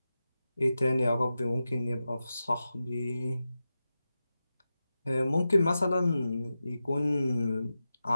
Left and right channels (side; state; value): both; inverted; correlation -0.92